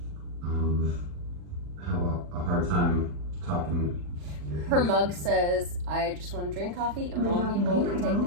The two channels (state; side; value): late; left; 40 ms